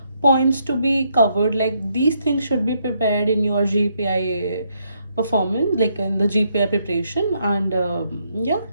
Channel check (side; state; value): both; inverted; correlation -0.75